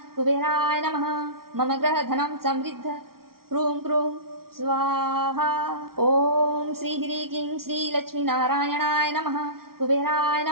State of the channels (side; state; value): left; late; 0.93 ms